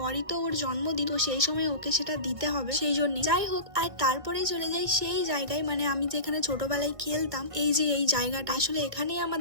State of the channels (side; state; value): left; late; 1.7 ms